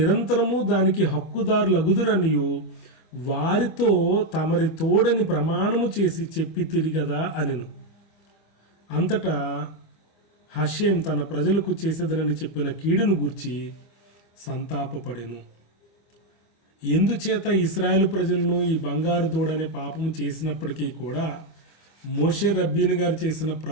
దానికి హక్కుదారులగుదురనియు వారితో తమరి తోడని ప్రమాణము చేసి చెప్పి తిరిగదా అనెను. అంతటా హషేం తన ప్రజలకు చేసేదనని చెప్పిన కీడును గూర్చి సంతాపపడెను. ఎందుచేత ఇశ్రాయేలు ప్రజలను ఈ బంగారు దూడనే పాపము చేసినప్పటికీ కూడా మోషే రబ్బీని గారు చేసిన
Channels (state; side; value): late; right; 25 ms